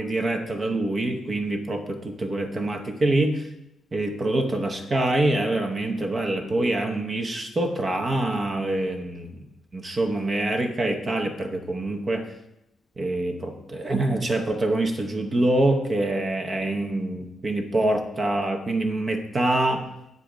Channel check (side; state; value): both; normal; correlation 0.87